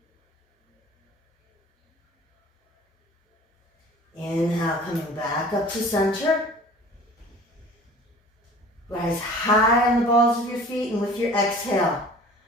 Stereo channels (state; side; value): normal; both; correlation 0.45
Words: Inhale, coming back up to center. Rise high on the balls of your feet, and with your exhale,